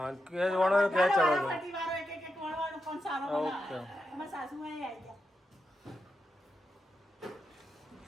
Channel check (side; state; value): both; normal; correlation 0.87